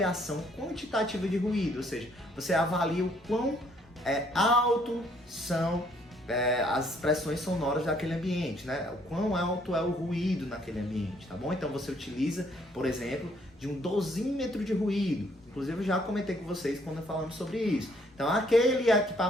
quantitativa de ruído, ou seja, você avalia o quão alto são as expressões sonoras daquele ambiente, né? O quão alto é o ruído naquele ambiente, tá bom? Então você utiliza, por exemplo, de um dosímetro de ruído. Inclusive eu já comentei com vocês quando falamos sobre isso. Então aquele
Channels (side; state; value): both; normal; correlation 0.66